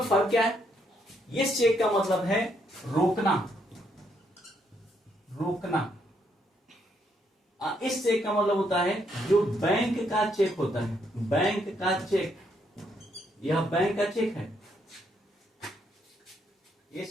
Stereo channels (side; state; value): both; normal; correlation 0.74